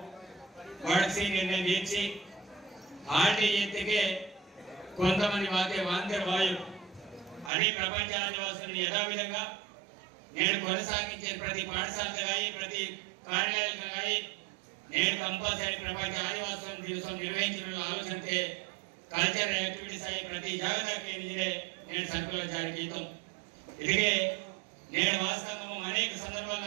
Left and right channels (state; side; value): drops out; left; at 7.5 s